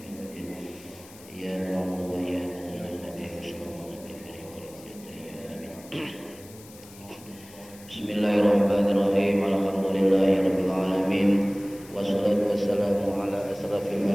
الرحيم. يا نعبد وإياك Bismillahirrahmanirrahim. Alhamdulillahirabbil alamin. Wassalatu wassalamu ala asrafil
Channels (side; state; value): left; noise; hiss, 21 dB below the sound